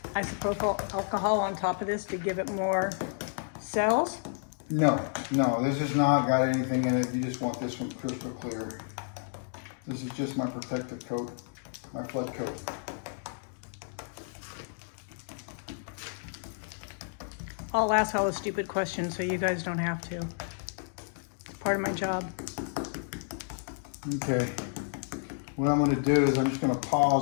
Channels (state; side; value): silent; right; digital silence